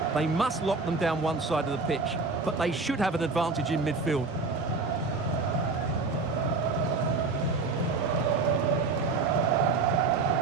They must lock them down one side of the pitch, but they should have an advantage in midfield.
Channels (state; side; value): quieter; left; 3.9 dB